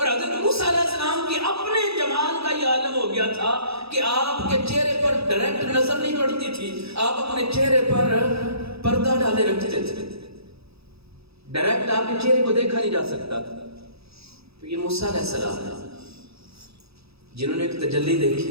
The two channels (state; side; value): late; left; 0.78 ms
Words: حضرت موسیٰ علیہ السلام کی اپنے جمال کا یہ عالم ہو گیا تھا کہ آپ کے چہرے پر ڈائریکٹ نظر نہیں پڑتی تھی، آپ اپنے چہرے پر پردہ ڈالے رکھتے تھے، ڈائریکٹ آپ کے چہرے کو دیکھا نہیں جا سکتا تھا۔ تو یہ موسیٰ علیہ السلام ہے جنہوں نے ایک تجلی